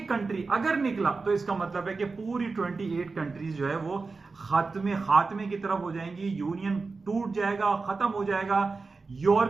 कंट्री अगर निकला, तो इसका मतलब है कि पूरी 28 कंट्रीज जो है वो खात्मे की तरफ हो जाएंगी, यूनियन टूट जाएगा, खत्म हो जाएगा।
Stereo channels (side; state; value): left; quieter; 4.1 dB